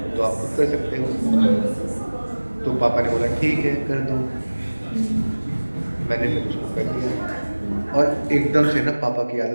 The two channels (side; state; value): both; inverted; correlation -1.00